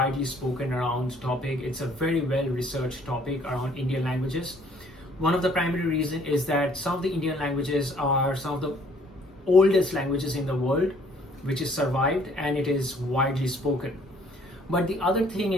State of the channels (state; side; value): normal; both; correlation 0.60